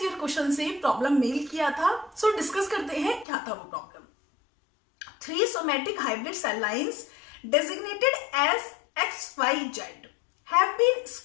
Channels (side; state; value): right; drops out; at 3.2 s